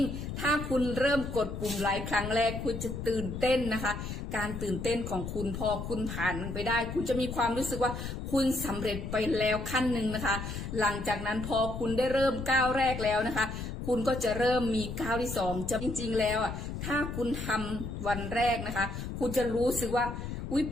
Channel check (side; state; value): left; noise; rumble, 6 dB below the sound